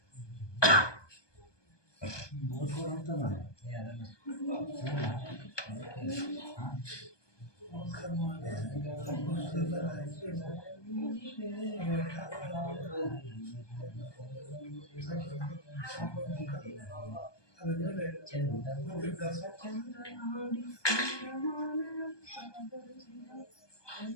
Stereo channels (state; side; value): late; right; 1.2 ms